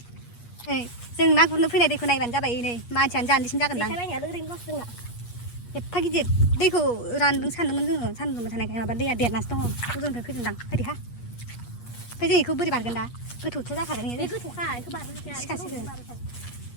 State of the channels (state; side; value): late; right; 8.4 ms